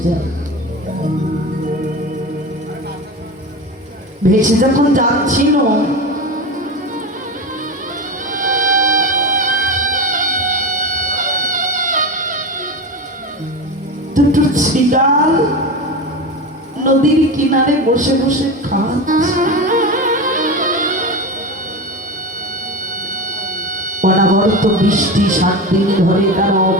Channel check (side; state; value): both; normal; correlation 0.24